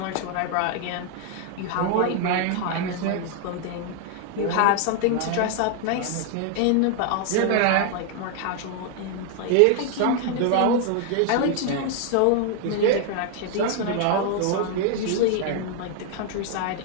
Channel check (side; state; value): both; different; correlation 0.00